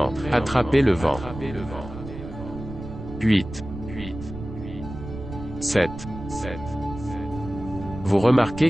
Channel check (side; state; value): right; noise; rumble, 11 dB below the sound